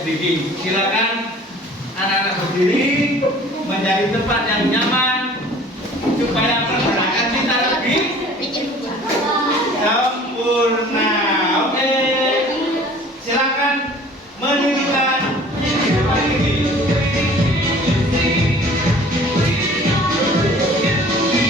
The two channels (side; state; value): both; normal; correlation 0.48